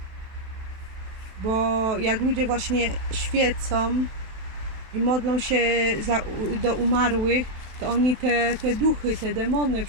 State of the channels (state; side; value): late; left; 28 ms